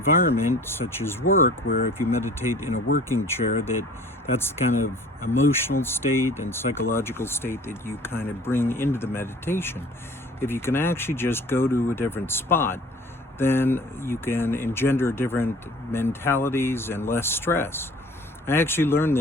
such as work, where if you meditate in a working chair, that's the kind of emotional state and psychological state that you kind of bring into the meditation. If you can actually just go to a different spot, then you can engender different mentalities and less stress. I actually learned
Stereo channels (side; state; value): both; normal; correlation 0.48